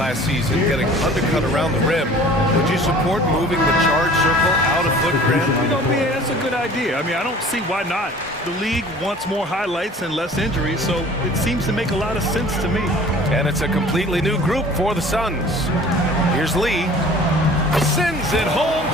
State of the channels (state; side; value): normal; both; correlation 0.47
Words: season getting undercut around the rim, would you support moving the charge circle out of footprint? You know, man, that's a good idea. I mean, I don't see why not. The league wants more highlights and less injuries, so it seems to make a lot of sense to me. And it's a completely new group for the Suns. Here's Lee. Sends it home